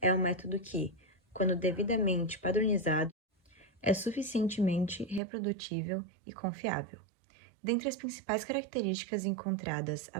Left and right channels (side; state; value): left; drops out; at 5.2 s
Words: é um método que, quando devidamente padronizado, é suficientemente reprodutível e confiável. Dentre as principais características encontradas